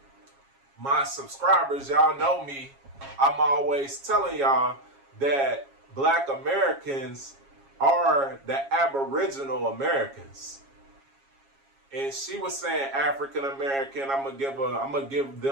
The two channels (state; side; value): late; left; 7.3 ms